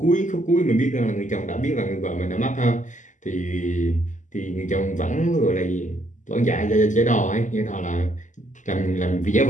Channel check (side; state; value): right; late; 0.37 ms